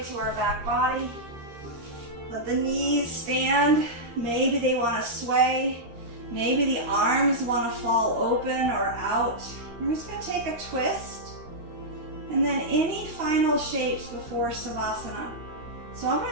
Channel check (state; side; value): late; left; 13 ms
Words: to our back body. Let the knees stand. Maybe they want to sway. Maybe the arms want to fall open or out. We're just going to take a twist. And then any final shapes before Savasana. So I'm